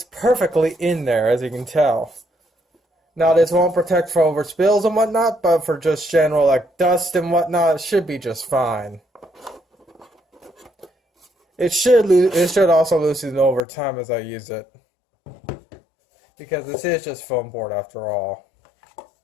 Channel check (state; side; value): drops out; right; at 13.6 s